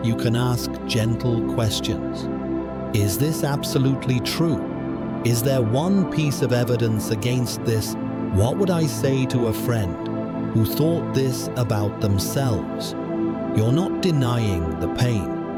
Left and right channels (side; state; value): left; noise; hum, 28 dB below the sound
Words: you can ask gentle questions. Is this absolutely true? Is there one piece of evidence against this? What would I say to a friend who thought this about themselves? You're not denying the pain.